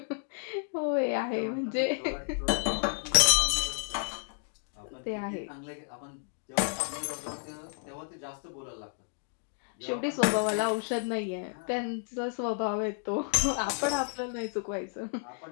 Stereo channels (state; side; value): silent; right; 57 dB below the other